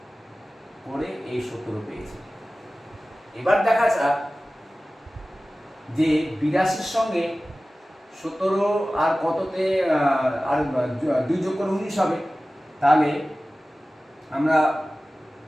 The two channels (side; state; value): both; normal; correlation 0.96